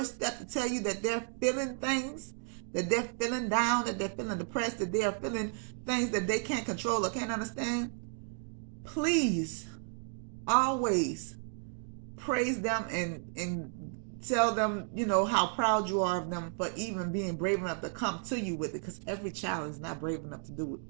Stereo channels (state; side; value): silent; left; 56 dB below the other